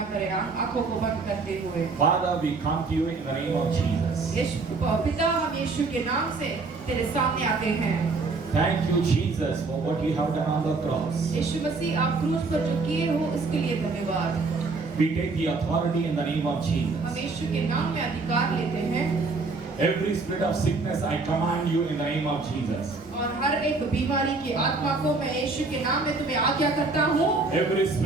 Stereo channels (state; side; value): quieter; left; 3.9 dB